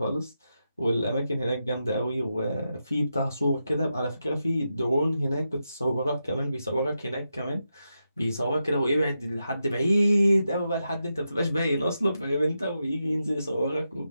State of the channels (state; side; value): inverted; both; correlation -0.87